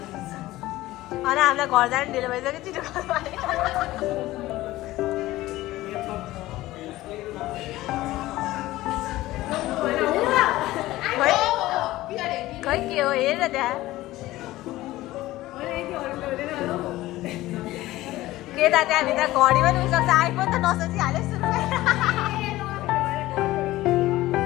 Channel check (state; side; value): quieter; right; 16.9 dB